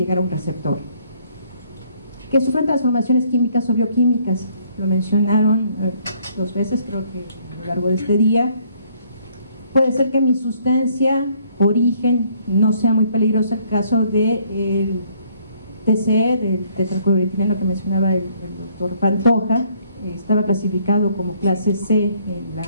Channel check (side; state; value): both; inverted; correlation -0.65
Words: a un receptor. Que sufran transformaciones químicas o bioquímicas, lo mencionaron 2 veces, creo que a lo largo de este día. Puede ser que mi sustancia, origen, no sea muy peligrosa. El caso del TCE, del tetracloroetileno que mencionaba el doctor Pantoja, estaba clasificado como clase C en la